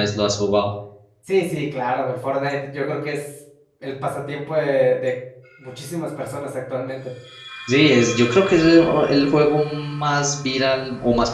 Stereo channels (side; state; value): both; identical; correlation 1.00